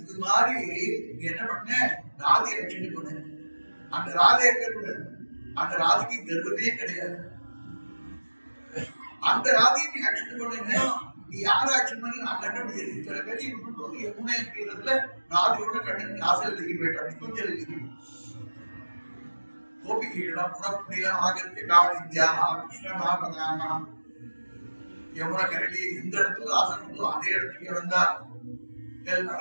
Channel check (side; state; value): both; inverted; correlation -1.00